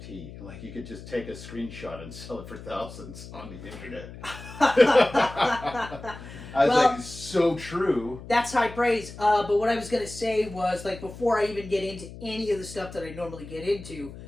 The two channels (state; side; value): noise; left; hum, 14 dB below the sound